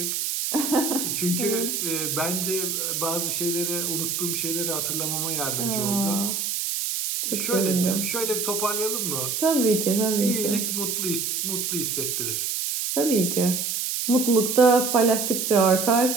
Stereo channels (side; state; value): right; noise; hiss, 1 dB below the sound